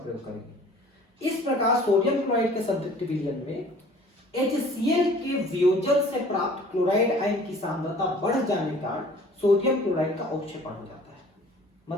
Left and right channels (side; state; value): both; normal; correlation 0.50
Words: करेंगे। इस प्रकार सोडियम क्लोराइड के संतृप्त विलयन में HCl के वियोजन से प्राप्त क्लोराइड आयन की सांद्रता बढ़ जाने के कारण सोडियम क्लोराइड का अवक्षेपण हो जाता है।